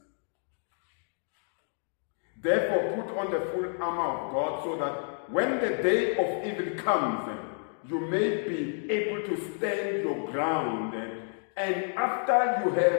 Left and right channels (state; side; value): silent; right; 58 dB below the other